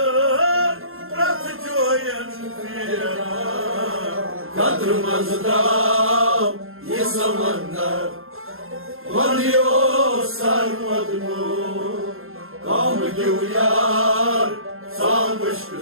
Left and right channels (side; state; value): left; late; 0.61 ms